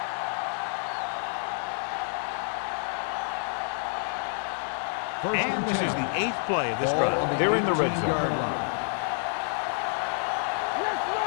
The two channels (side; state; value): right; silent; 55 dB below the other